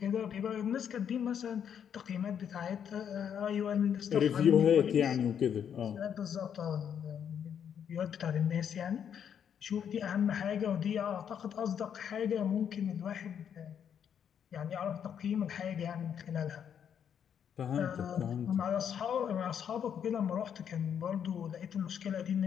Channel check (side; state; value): right; quieter; 8.4 dB